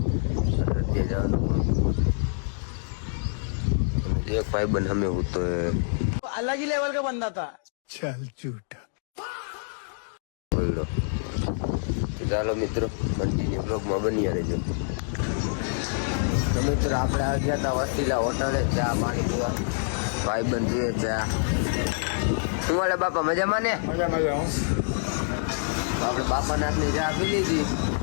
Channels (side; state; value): right; silent; digital silence